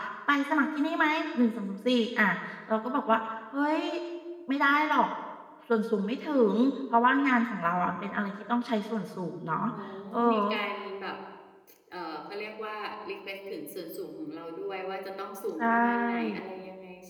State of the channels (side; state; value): both; identical; correlation 1.00